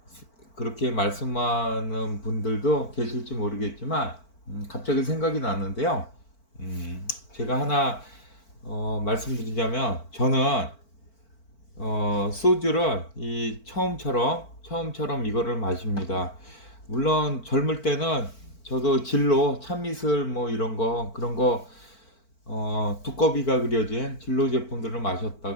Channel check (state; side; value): late; right; 4.5 ms